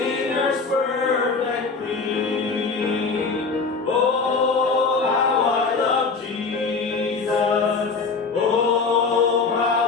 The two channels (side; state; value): right; quieter; 4.5 dB